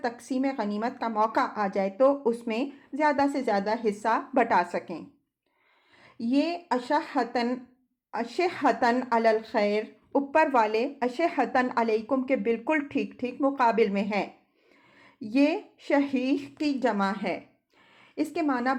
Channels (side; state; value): both; identical; correlation 1.00